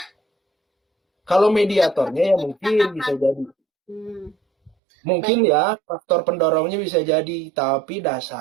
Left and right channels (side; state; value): left; drops out; at 4.7 s